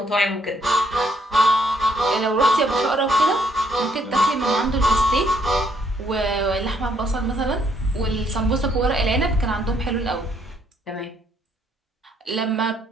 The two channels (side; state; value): both; normal; correlation 0.69